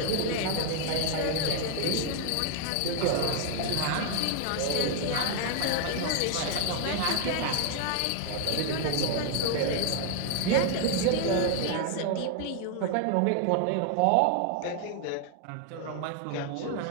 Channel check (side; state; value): both; different; correlation 0.00